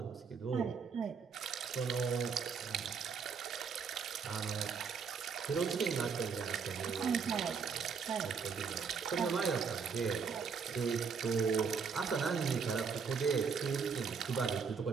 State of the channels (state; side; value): quieter; left; 5.9 dB